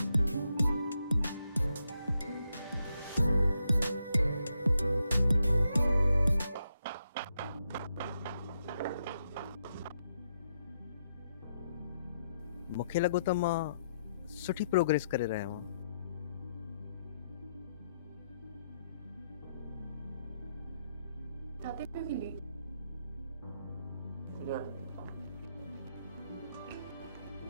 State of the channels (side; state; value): both; inverted; correlation -0.80